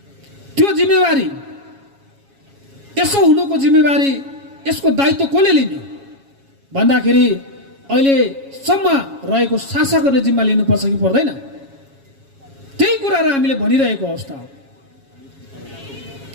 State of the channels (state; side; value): late; left; 7.3 ms